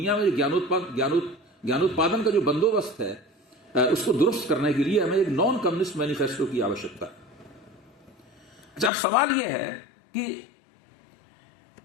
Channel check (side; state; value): right; drops out; at 8.9 s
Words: में ज्ञानोत्पादन का जो बंदोबस्त है उसको दुरुस्त करने के लिए हमें एक नॉन कम्युनिस्ट मैनिफेस्टो की आवश्यकता है। अच्छा, अब सवाल यह है कि